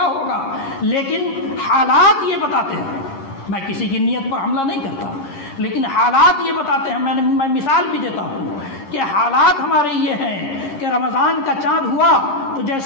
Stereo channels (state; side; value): late; right; 10 ms